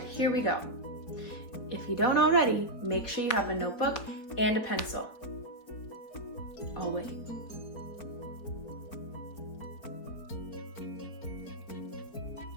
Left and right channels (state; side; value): late; right; 4.1 ms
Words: here we go. If you don't already, make sure you have a notebook and a pencil. I'll wait.